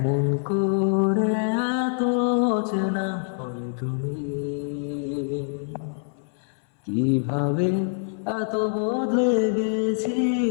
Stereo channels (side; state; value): right; silent; 62 dB below the other